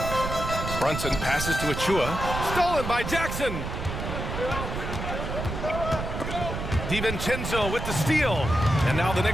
Brunson passes to Achua. Stolen by Jackson. DiVincenzo with the steal. And now the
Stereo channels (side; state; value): right; noise; rumble, 5 dB below the sound